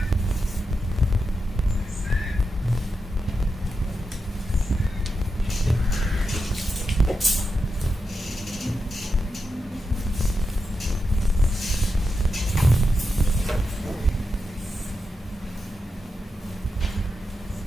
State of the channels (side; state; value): both; normal; correlation 0.87